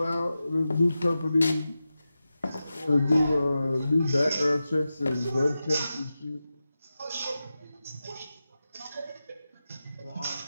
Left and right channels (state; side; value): inverted; both; correlation -0.92